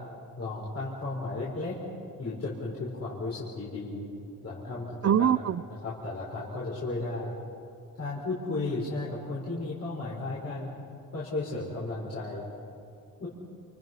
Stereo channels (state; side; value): normal; both; correlation 0.31